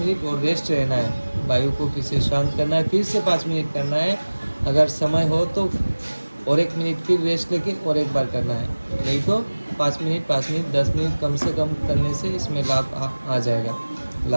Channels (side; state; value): both; inverted; correlation -1.00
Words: और रेस्ट रहना है, वायु को फिर से शांत करना है, फिर से 5 मिनट करना है। अगर समय हो तो और 1 मिनट फिर रेस्ट लेके और एक बार करना है, नहीं तो 5 मिनट 10 मिनट कम से कम करने से इसमें लाभ आ जाएगा,